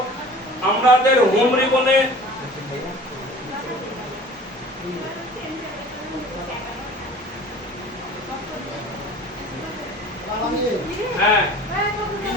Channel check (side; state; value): both; normal; correlation 0.44